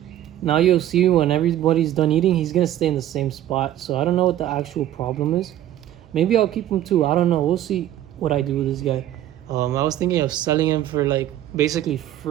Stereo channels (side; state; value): left; quieter; 12.5 dB